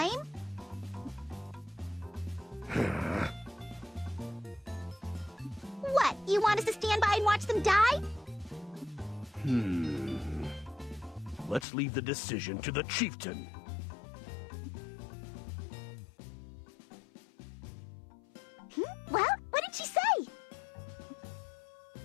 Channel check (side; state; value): right; drops out; at 11.7 s